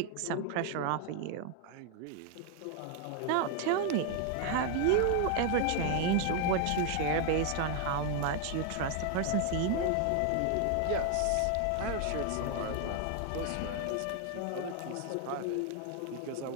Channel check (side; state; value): both; different; correlation 0.00